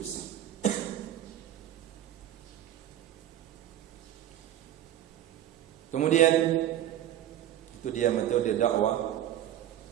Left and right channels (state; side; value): quieter; left; 11.9 dB